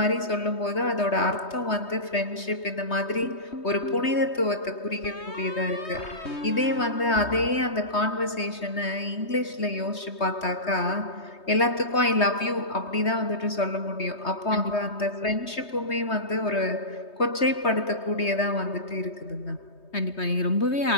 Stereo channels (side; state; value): right; late; 3.2 ms